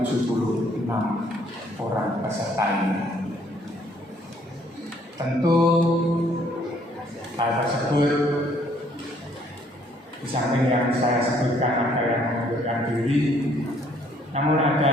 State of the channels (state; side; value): normal; both; correlation 0.64